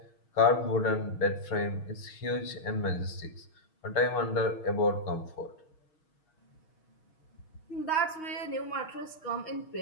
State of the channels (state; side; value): late; right; 6.4 ms